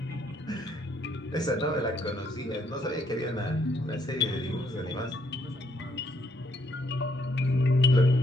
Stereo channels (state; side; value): normal; both; correlation 0.71